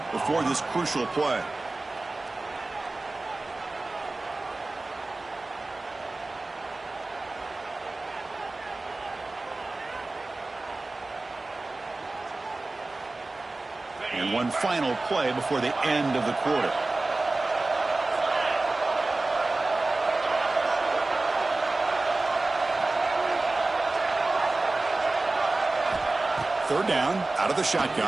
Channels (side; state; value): left; quieter; 3.1 dB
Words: before this crucial play. And one final play before the end of the quarter. Third down, out of the